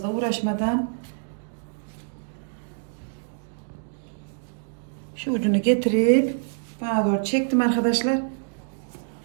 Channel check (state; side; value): silent; left; digital silence